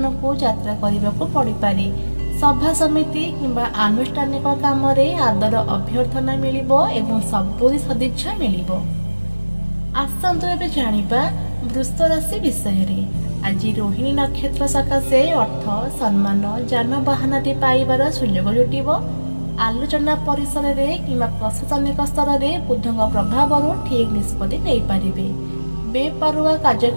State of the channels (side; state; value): both; inverted; correlation -1.00